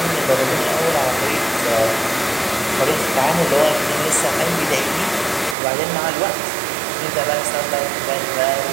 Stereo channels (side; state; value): left; drops out; at 5.6 s